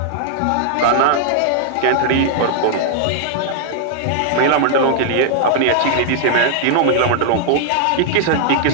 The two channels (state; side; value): different; both; correlation -0.01